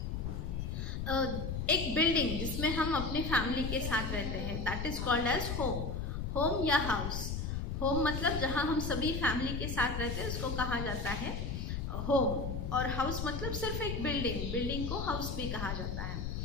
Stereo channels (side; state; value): left; noise; rumble, 3 dB below the sound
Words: एक बिल्डिंग जिसमें हम अपने फैमिली के साथ रहते हैं. That is called age home. Home या हाउस. होम मतलब जहाँ हम सभी फैमिली के साथ रहते हैं उसको कहा जाता है होम. और हाउस मतलब सिर्फ एक बिल्डिंग. बिल्डिंग को हाउस भी कहा जाता है.